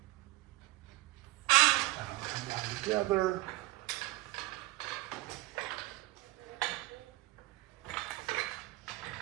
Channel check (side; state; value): left; quieter; 18.5 dB